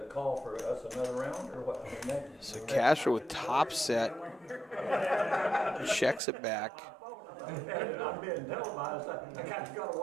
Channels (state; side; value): drops out; left; at 6.2 s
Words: call for us another round, or what? I mean, So Castro with top set checks it back. I'm being televised. I kind of got to